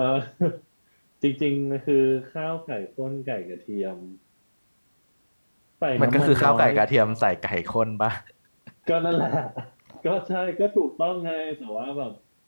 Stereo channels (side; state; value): both; inverted; correlation -1.00